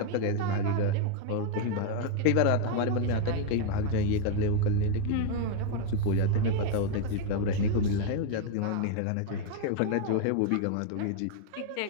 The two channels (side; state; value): both; different; correlation 0.01